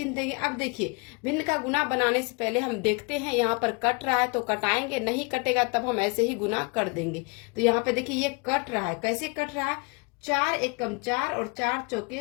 देंगे। अब देखिए, भिन्न का गुना बनाने से पहले हम देखते हैं यहाँ पर कट रहा है तो कटाएंगे, नहीं कटेगा तब हम ऐसे ही गुना कर देंगे। तो यहाँ पे देखिए, ये कट रहा है। कैसे कट रहा है, 4 एकम 4 और 4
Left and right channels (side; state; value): right; quieter; 30.2 dB